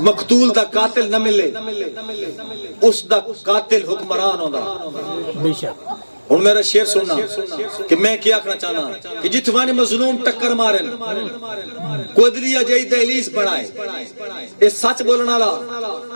مقتول دا قاتل نہ ملے اس دا قاتل حکمران ہوگا۔ ہوں میرا شعر سننا کہ میں کیا کرنا چاہنا کہ جتوانی مظلوم ٹکر مارن قدریا جائی دہلیز بنائے، یہ سچ بولنا والا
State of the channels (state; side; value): inverted; both; correlation -1.00